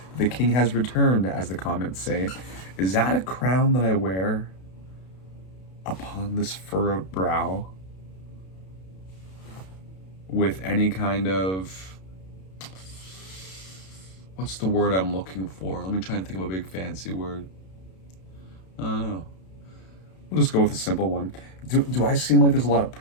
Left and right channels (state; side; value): late; right; 32 ms